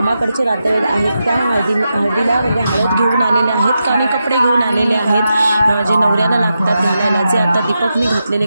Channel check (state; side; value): inverted; both; correlation -0.88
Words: नातेवाईक आहेत. त्या हळदीला म्हणजे हळद घेऊन आलेले आहेत आणि कपडे घेऊन आलेले आहेत जे नवऱ्याला लागतात घालायला. जे आता दीपकने घातलेले